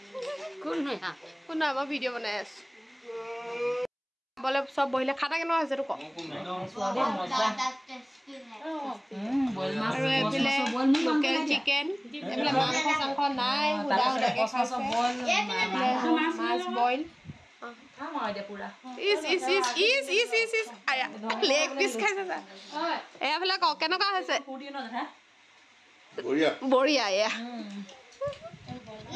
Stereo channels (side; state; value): both; identical; correlation 1.00